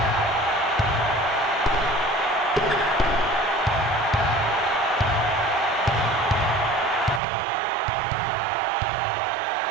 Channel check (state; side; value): drops out; left; at 7.2 s